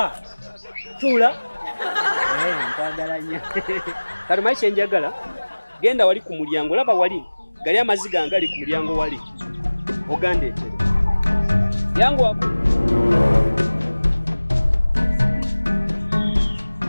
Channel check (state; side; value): inverted; both; correlation -1.00